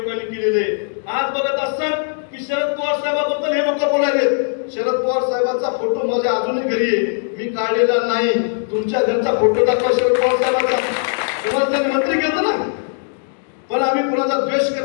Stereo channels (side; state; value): right; silent; digital silence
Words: केलेलं आहे. आज बघत असतात की शरद पवार साहेबाबद्दल हे लोक बोलायलेत. शरद पवार साहेबांचा फोटो माझ्या अजूनही घरी आहे, मी काढलेला नाही. तुमच्या घरचा फोटो दाखवा शरद पवार साहेबांचा. तुम्हाला मंत्री घेतो ना, पण आम्ही कुणाचा द्वेष